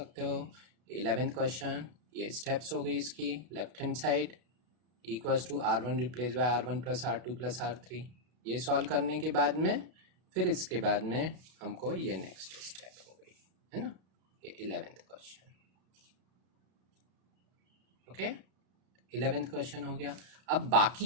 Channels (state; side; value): late; left; 32 ms